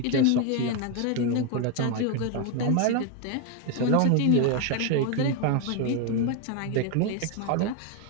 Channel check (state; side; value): different; both; correlation 0.01